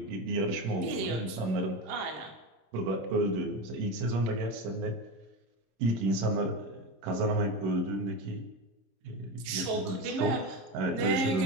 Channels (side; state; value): left; late; 26 ms